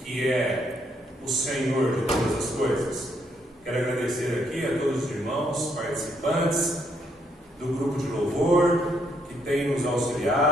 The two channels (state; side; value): normal; both; correlation 0.73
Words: é o Senhor de todas as coisas. Quero agradecer aqui a todos os irmãos participantes do grupo de louvor que tem nos